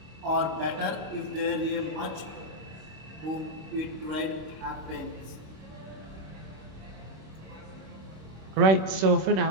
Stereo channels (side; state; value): left; late; 26 ms